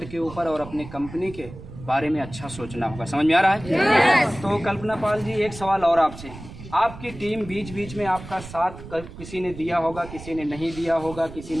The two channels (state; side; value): noise; right; rumble, 14 dB below the sound